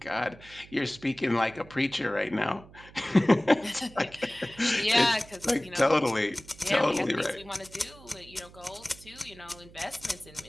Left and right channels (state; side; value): noise; right; hum, 21 dB below the sound